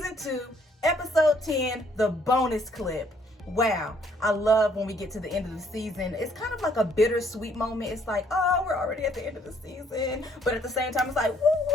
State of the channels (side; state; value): both; normal; correlation 0.65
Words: 2, episode 10, the bonus clip. Wow, I love when we get to the end of the season. It's kind of like a bittersweet moment. It's like, oh, we're already at the end of the season. But at the same time, it's like, woo,